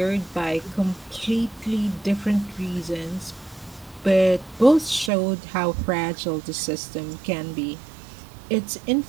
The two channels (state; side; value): drops out; left; at 5.1 s